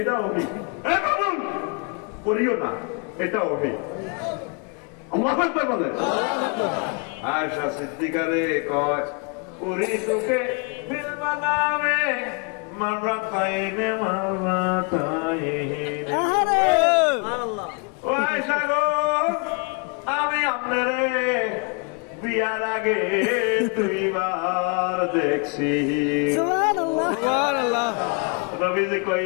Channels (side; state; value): right; quieter; 35.9 dB